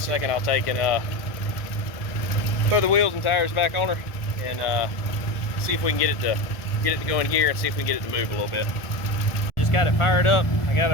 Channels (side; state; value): right; late; 1.5 ms